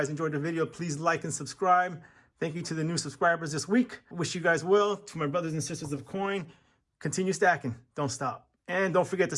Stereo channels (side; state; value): both; identical; correlation 1.00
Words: enjoyed the video. Please like and subscribe. Thank you to the new subscribers this week. Wish you guys well. To my brothers and sisters of coin, continue stacking. Don't stop. And don't forget to